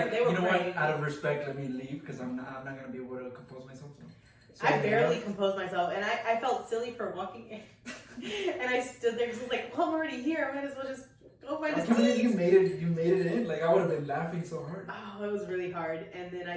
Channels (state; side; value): identical; both; correlation 1.00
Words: you know what? Out of respect, let me leave because I'm not gonna be able to compose myself. So I barely composed myself, and I felt silly for walking in. And I stood there because I was like, well, I'm already here. I might as well just Go find I a can't believe seat. you made it in. Like, I would have been laughing so hard. Oh, it was really hard. And then